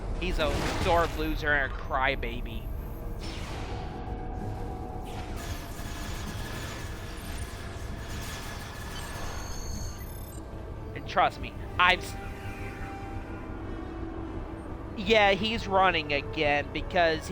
He's a sore loser and a crybaby. And trust me, yeah, he's running again because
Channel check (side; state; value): both; identical; correlation 1.00